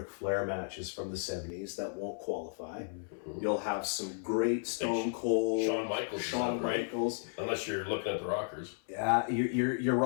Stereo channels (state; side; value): silent; right; 55 dB below the other